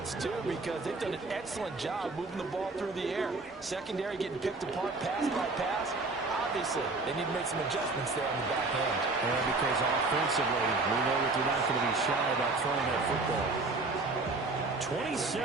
it's due, because they've done an excellent job moving the ball through the air. Secondary getting picked apart pass by pass. Obviously, they need to make some adjustments there on the back end. And because offensively, we know that they're not going to be shy about throwing that football.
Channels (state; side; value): quieter; left; 3.5 dB